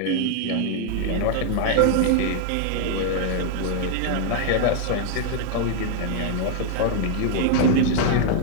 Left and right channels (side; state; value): both; different; correlation -0.01